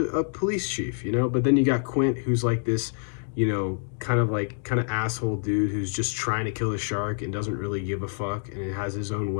police chief, you know. But then you got Quint, who's like this, you know, kind of asshole dude who's just trying to kill a shark and doesn't really give a fuck, and has his own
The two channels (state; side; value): silent; right; digital silence